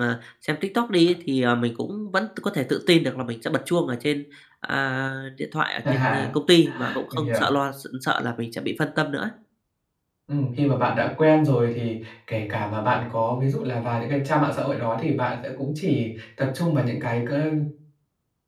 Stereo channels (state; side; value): identical; both; correlation 1.00